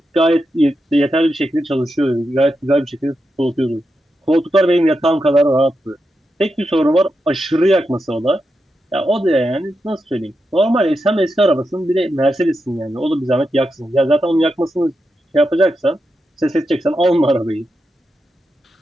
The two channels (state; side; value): normal; both; correlation 0.87